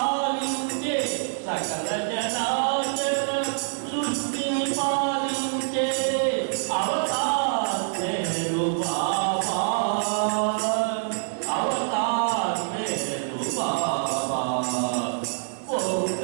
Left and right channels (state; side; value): silent; left; 61 dB below the other